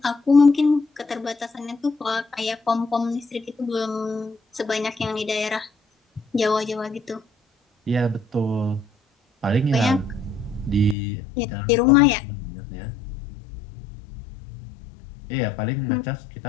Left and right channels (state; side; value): drops out; right; at 11.0 s